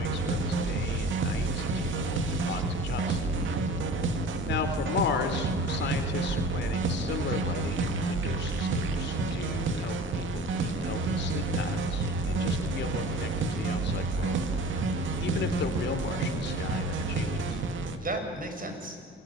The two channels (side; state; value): both; normal; correlation 0.40